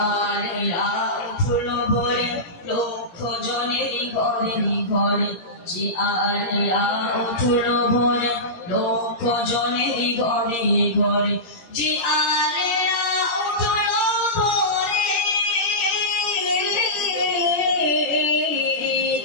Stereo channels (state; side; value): late; right; 17 ms